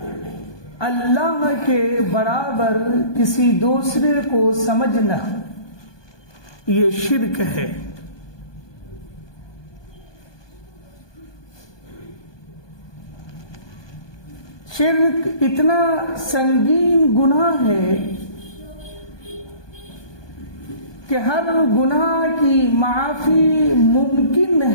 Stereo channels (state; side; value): late; right; 1.2 ms